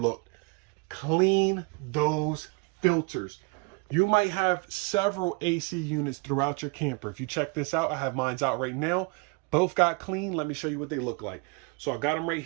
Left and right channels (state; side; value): quieter; left; 31.1 dB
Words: Clean those filters. You might have several AC units throughout your camper. If you check this out, I have mine out right now. Both got clean. Let me show you what they look like. So I got them right